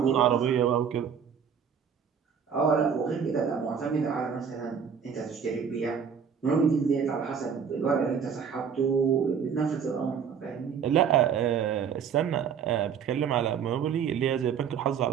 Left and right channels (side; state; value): left; quieter; 7.2 dB